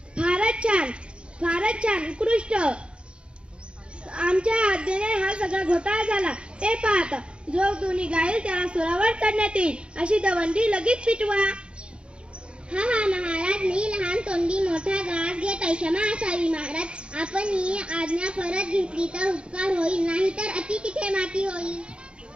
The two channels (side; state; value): left; late; 0.056 ms